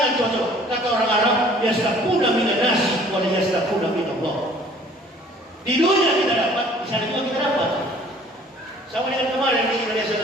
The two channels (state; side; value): normal; both; correlation 0.53